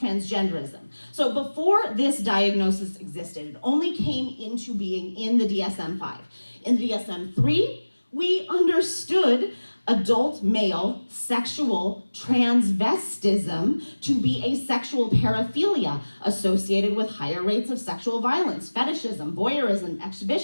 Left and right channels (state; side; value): inverted; both; correlation -1.00